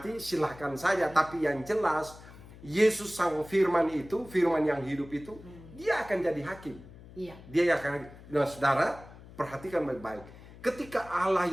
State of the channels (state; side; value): noise; left; hum, 19 dB below the sound